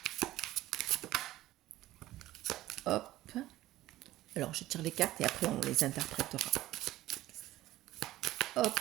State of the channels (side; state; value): left; quieter; 15.6 dB